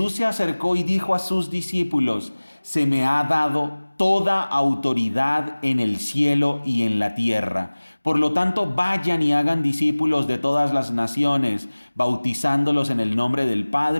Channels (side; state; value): both; inverted; correlation -1.00